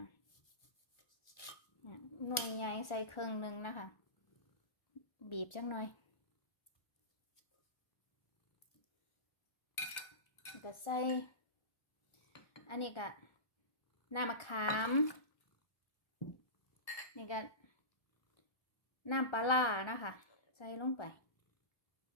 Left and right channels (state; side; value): late; right; 1.4 ms